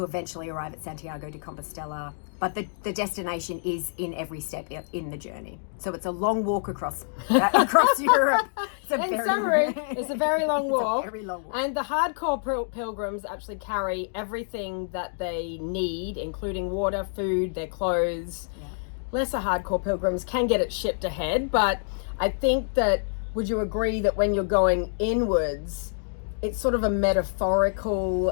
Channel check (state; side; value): silent; right; digital silence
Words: eventually arrive at Santiago de Compostela. But the destination is in every step in the journey. So it's a long walk across Europe. In summary, it's a very long walk. Very long walk. And the hardcore pilgrims actually carry everything that they need, including water, food, their clothes. Yeah. Lesser hardcore pilgrims can get it shipped ahead, but I think that, would you agree that when you're going inwards, it's sort of a metaphorical